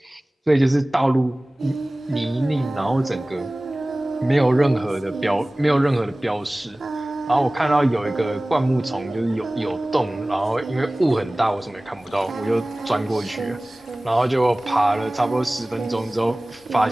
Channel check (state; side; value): normal; both; correlation 0.98